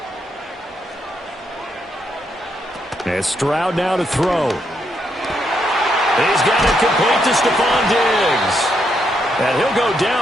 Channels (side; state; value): both; normal; correlation 0.78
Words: And Stroud now to throw. He's got it complete to Stephon Diggs. And he'll go